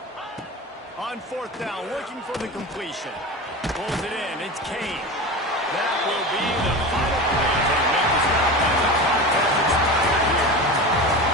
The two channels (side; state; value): both; normal; correlation 0.28